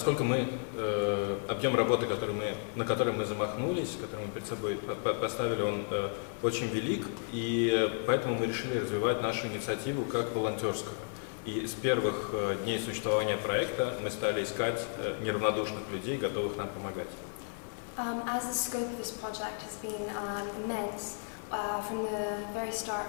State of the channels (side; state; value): right; silent; 56 dB below the other